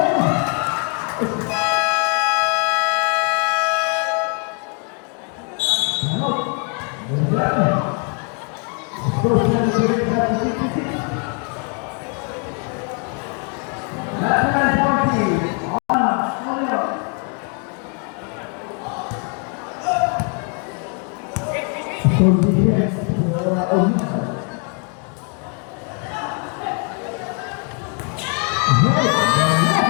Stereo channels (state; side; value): quieter; right; 39.3 dB